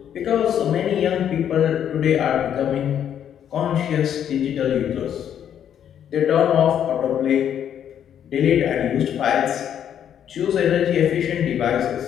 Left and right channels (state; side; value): quieter; right; 9.4 dB